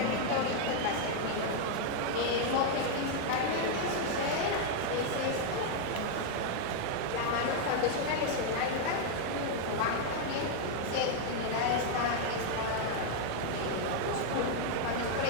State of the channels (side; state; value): both; different; correlation 0.00